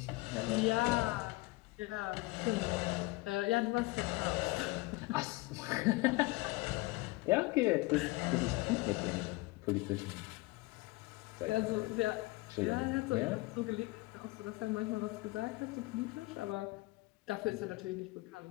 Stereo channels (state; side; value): quieter; right; 22.5 dB